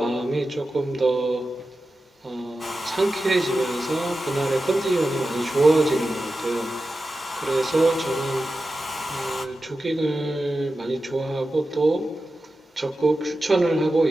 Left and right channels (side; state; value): both; normal; correlation 0.92